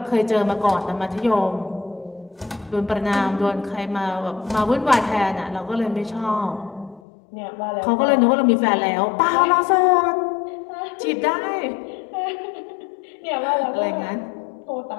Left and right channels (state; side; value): drops out; right; at 7.0 s